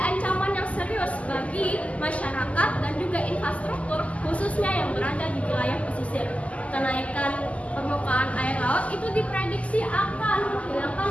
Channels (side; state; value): right; late; 0.068 ms